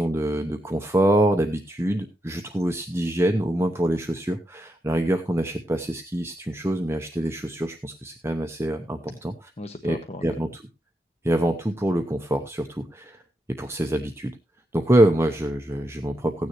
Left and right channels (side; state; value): both; normal; correlation 0.84